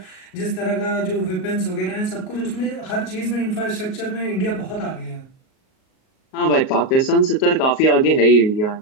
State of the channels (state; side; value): late; right; 38 ms